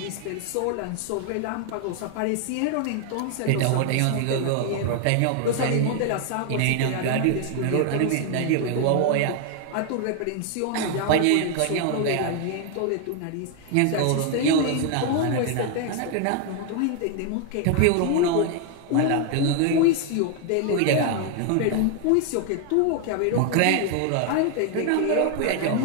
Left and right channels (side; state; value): both; different; correlation 0.00